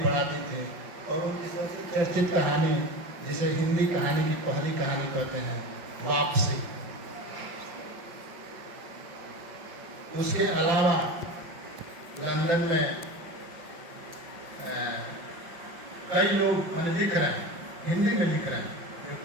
थे और उनकी सबसे चर्चित कहानी जिसे हिंदी कहानी की पहली कहानी कहते हैं वापसी। उसके अलावा लंदन में कई लोग लिख रहे हैं, हिंदी में लिख रहे हैं,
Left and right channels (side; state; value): left; late; 5.8 ms